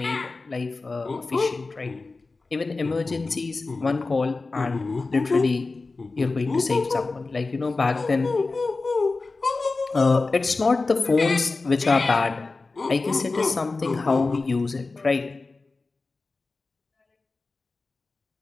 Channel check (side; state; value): right; quieter; 3.7 dB